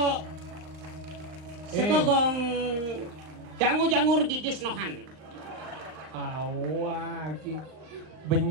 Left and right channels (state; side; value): late; left; 38 ms